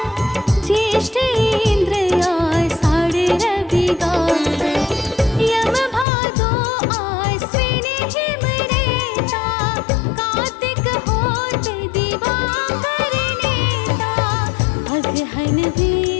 ज्येष्ठ इंद्र आषाढ़ रवि गावे। यम भादो आश्विन हिम रेता, कार्तिक होत दिवाकर नेता। अगहन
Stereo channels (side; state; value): right; drops out; at 6.1 s